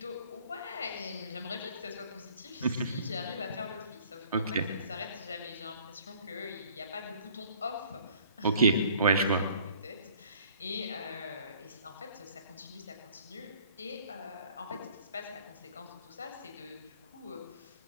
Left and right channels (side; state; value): both; inverted; correlation -0.55